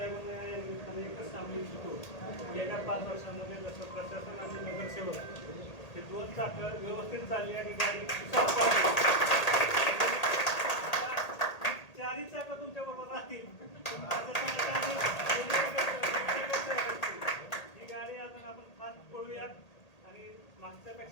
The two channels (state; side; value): late; right; 1.8 ms